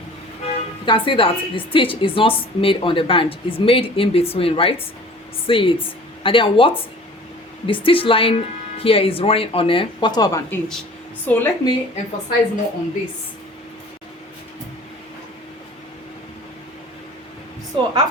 the stitch is not made on the band, it's made in between, right? See it. And then what the stitch line here is running on a 1/4 of an inch. So let me emphasize more on this. So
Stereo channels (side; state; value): both; normal; correlation 0.46